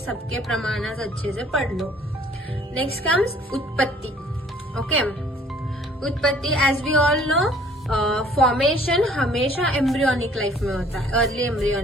प्रमाण अच्छे से पढ़ लो. नेक्स्ट कम्स उत्पत्ति. ओके, उत्पत्ति as we all know formation हमेशा एम्ब्रियोनिक लाइफ में होता है, अर्ली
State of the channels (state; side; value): normal; both; correlation 0.56